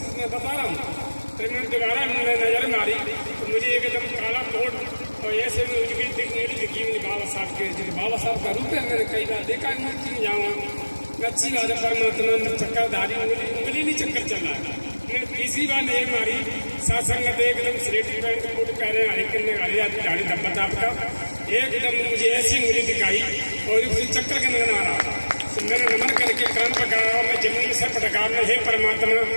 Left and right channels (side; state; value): both; inverted; correlation -1.00